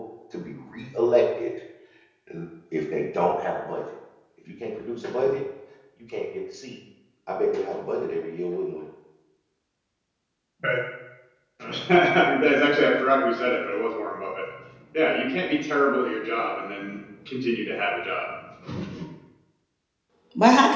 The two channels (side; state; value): both; identical; correlation 1.00